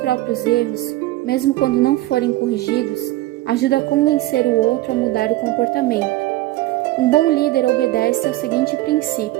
erros, mesmo quando não forem corrigidos, ajuda a convencer o outro a mudar o comportamento. Um bom líder obedece ao seguinte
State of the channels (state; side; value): quieter; left; 17.0 dB